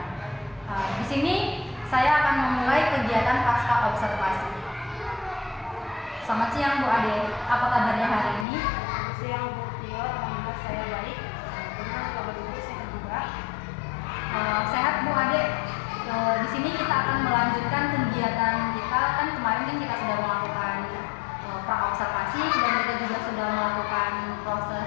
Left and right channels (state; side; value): drops out; right; at 8.5 s